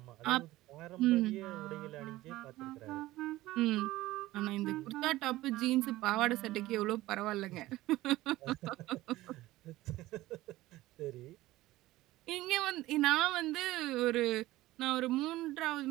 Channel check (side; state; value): left; quieter; 17.1 dB